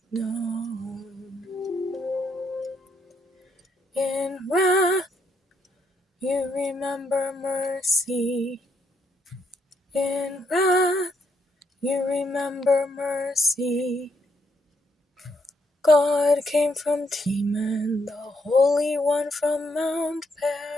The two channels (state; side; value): normal; both; correlation 0.75